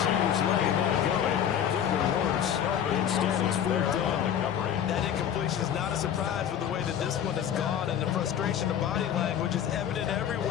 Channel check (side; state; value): right; quieter; 9.3 dB